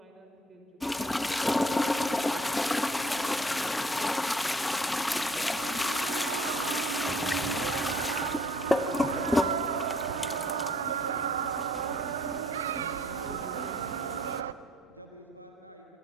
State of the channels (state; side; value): normal; both; correlation 0.59